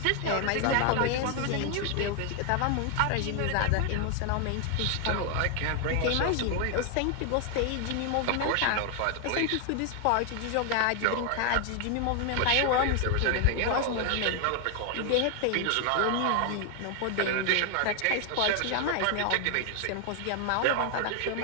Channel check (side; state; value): both; different; correlation 0.00